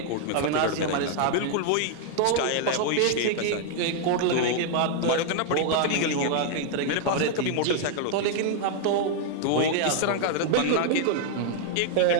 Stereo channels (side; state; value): both; different; correlation 0.00